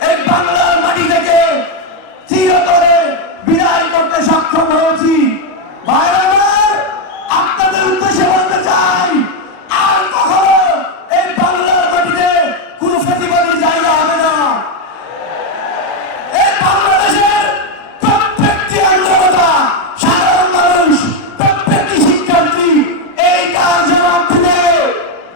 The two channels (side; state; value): right; late; 40 ms